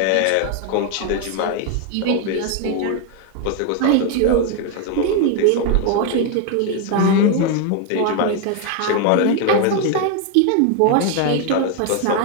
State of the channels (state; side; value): different; both; correlation 0.01